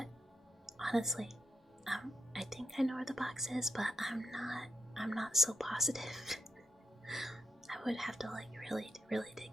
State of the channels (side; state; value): both; normal; correlation 0.83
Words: honestly, I think I know where the box is, but I'm not so positive. I would have to like really